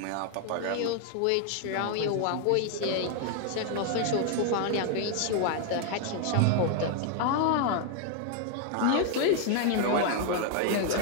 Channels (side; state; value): both; different; correlation 0.00